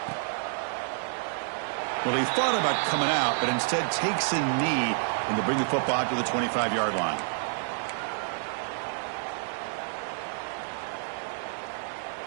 Well, he thought about coming out, but instead takes a knee and to bring the football to the 25-yard line.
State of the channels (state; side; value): silent; left; digital silence